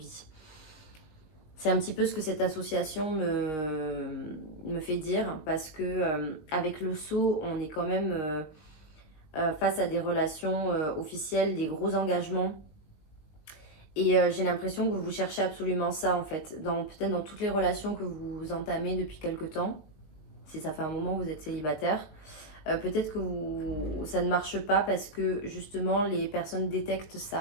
C'est un petit peu ce que cette association me fait dire, parce que avec le sceau, on est quand même face à des relations officielles, des gros engagements. Et j'ai l'impression que vous cherchez absolument ça en fait, peut-être dans toutes les relations que vous entamez depuis quelque temps, si ça fait un moment que vous êtes célibataire. Peut-être que ça ne marche pas parce que justement les personnes détectent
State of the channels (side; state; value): right; late; 20 ms